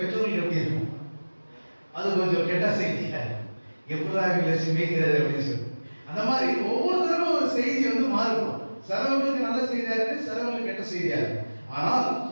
பெற்றோர்களுக்கு எப்படி இருக்கும், அது கொஞ்சம் கெட்ட செய்தி, எப்படிதான் இவங்களை சிந்திக்கிறது அப்படின்னு சொல்லி. அந்த மாதிரி ஒவ்வொருத்தருக்கும் ஒரு செய்தி மாறுபடும். சிலவங்களுக்கு நல்ல செய்தியா இருக்கு, சிலவங்களுக்கு கெட்ட செய்தியா இருக்கு. ஆனால்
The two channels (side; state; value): both; inverted; correlation -1.00